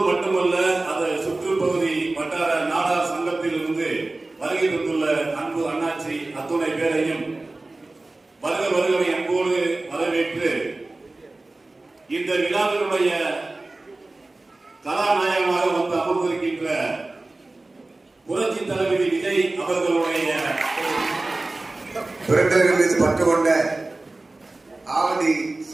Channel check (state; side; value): quieter; left; 3.0 dB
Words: மட்டுமல்ல அது சுற்றுப்பகுதி வட்டார நாடார் சங்கத்தில் இருந்து வருகை தந்துள்ள அன்பு அண்ணாச்சி அத்துணை பேரையும் வருகை அன்போடு வரவேற்று இந்த விழாவினுடைய கதாநாயகமாக வந்து அமர்ந்திருக்கின்ற புரட்சி தளபதி விஜய் அவர்களுடைய பிறந்தவர்கள் மீது பற்று கொண்ட ஆவடி